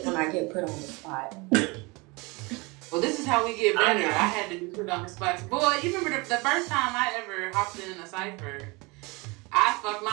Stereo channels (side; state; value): left; quieter; 26.3 dB